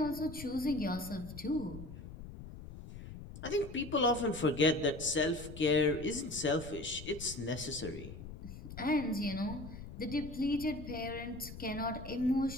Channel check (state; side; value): noise; left; rumble, 12 dB below the sound